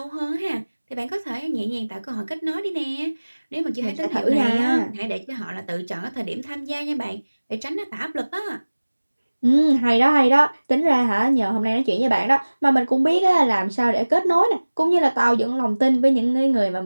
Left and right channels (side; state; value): both; inverted; correlation -1.00